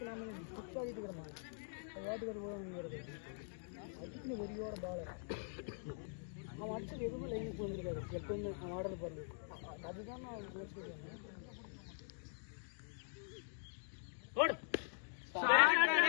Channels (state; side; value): silent; right; digital silence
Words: புக்ஸ் ஆகிட்டு இருக்கிறமா வாட்டுக்கார போகிறது அதுக்கு வெறியோட பால் அவன் அடிச்சது எதுவுமே லைனுக்கு வந்துருக்காரு. எப்பவுமே அவன் ஆடுறது பாருங்க, அதுதான் நான் யோசிக்கிறேன்.